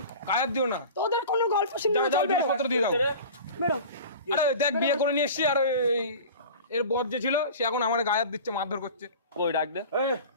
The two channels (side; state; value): both; inverted; correlation -0.37